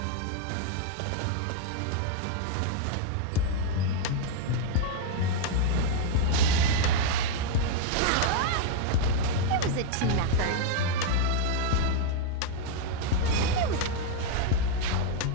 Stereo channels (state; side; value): different; both; correlation 0.00